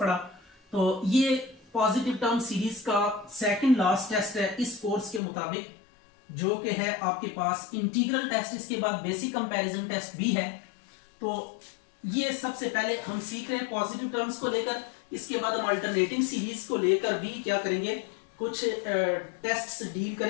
तो ये पॉजिटिव टर्म सीरीज का सेकंड लास्ट टेस्ट है इस कोर्स के मुताबिक, जो कि है आपके पास इंटीग्रल टेस्ट। इसके बाद बेसिक कंपैरिजन टेस्ट भी है। तो ये सबसे पहले हम सीख रहे हैं पॉजिटिव टर्म्स को लेकर। इसके बाद हम अल्टरनेटिंग सीरीज को लेकर भी क्या करेंगे, कुछ टेस्ट डील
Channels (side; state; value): right; drops out; at 5.2 s